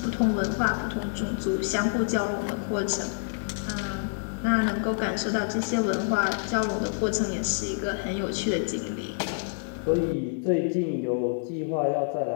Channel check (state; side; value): silent; right; digital silence